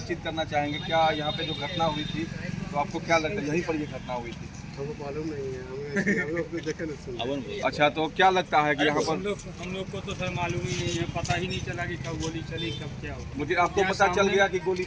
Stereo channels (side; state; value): both; identical; correlation 1.00